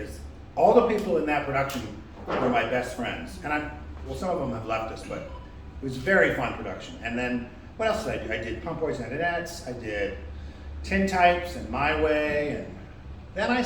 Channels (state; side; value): identical; both; correlation 1.00